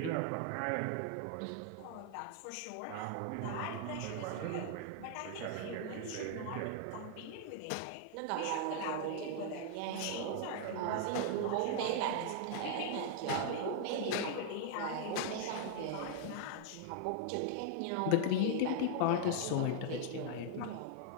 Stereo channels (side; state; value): both; different; correlation -0.01